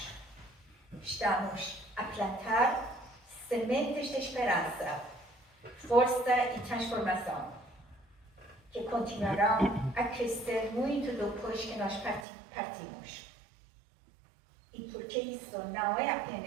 Estamos a plantar sementes de esperança, força e transformação, que continuarão a crescer muito depois que nós partimos. E porque isso não é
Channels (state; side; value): drops out; left; at 12.2 s